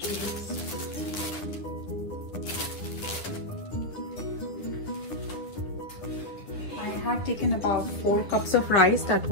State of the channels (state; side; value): late; right; 9.9 ms